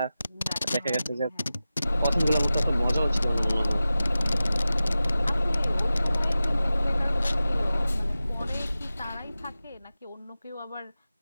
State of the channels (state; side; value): inverted; both; correlation -0.95